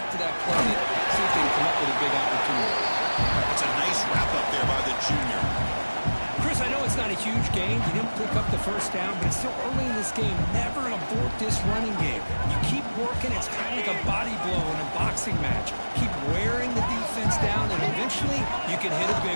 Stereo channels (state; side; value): inverted; both; correlation -1.00